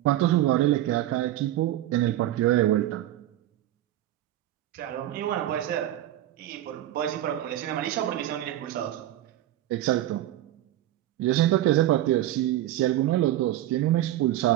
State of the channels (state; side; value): quieter; left; 13.8 dB